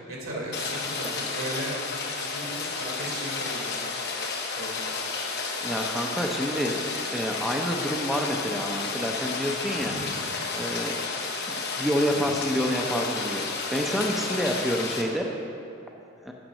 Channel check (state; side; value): normal; both; correlation 0.42